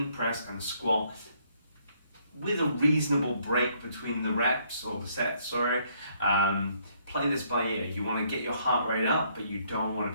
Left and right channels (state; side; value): inverted; both; correlation -0.69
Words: press and squat with a reasonable break between the reps or the sets, play this by ear. You want to get your heart rate up, but you don't want to